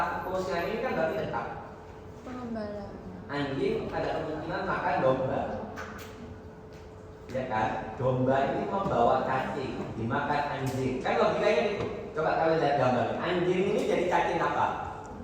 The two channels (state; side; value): identical; both; correlation 1.00